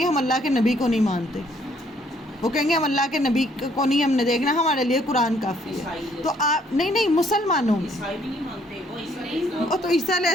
ہم اللہ کے نبی کو نہیں مانتے, وہ کہیں گے ہم اللہ کے نبی کو نہیں ہم نے دیکھنا, ہمارے لیے قرآن کافی ہے. تو آپ نہیں مسلمانوں تو عیسیٰ علیہ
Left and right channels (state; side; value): normal; both; correlation 0.65